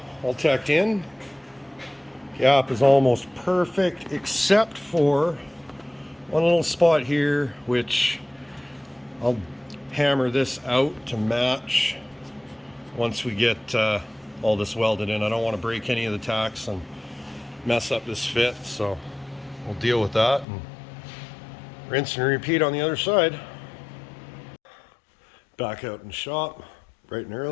all tacked in. Gap is almost perfect except for one little spot here, which I'll hammer this out to match once we get all this welded in. I don't want to break any of the tacks and mess up this fit, so we'll deal with that and rinse and repeat on the other side. Back out in the shop bright and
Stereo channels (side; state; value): right; drops out; at 20.5 s